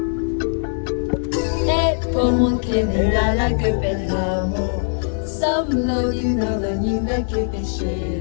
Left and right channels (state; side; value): silent; right; digital silence